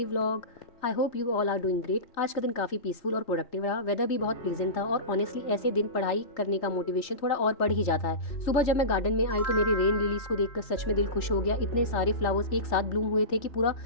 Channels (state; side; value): late; right; 3.3 ms